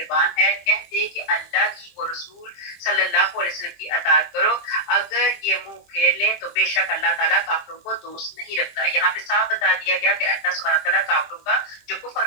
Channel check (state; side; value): late; right; 23 ms